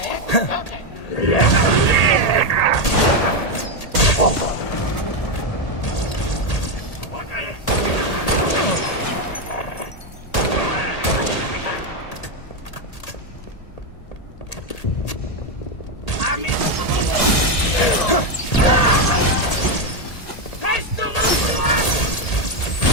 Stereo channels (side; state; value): right; late; 1.7 ms